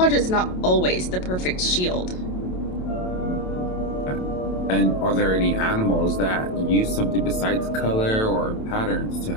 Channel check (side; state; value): right; late; 27 ms